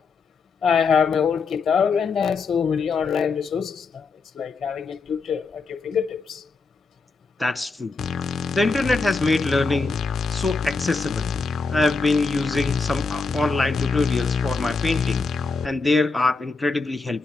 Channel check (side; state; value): right; quieter; 4.3 dB